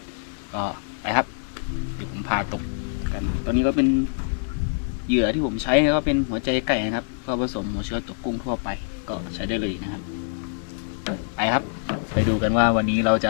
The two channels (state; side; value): silent; right; digital silence